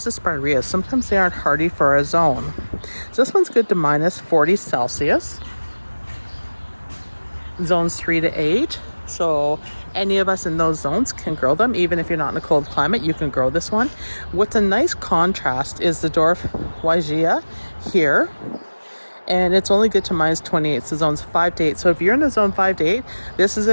the spireas. Sometimes they aren't hardy for a zone. So this one's good to minus 40 Celsius. Zones 3 to 8. So any of us in those zones can grow them. Even if you're not in a cold climate, you can grow this one. What's a nice contrast is the dwarf Wygia here. And it's only good to minus 28. So zones 5 to 8. So if you're in the zone 5 to 8, this is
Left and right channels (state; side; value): inverted; both; correlation -1.00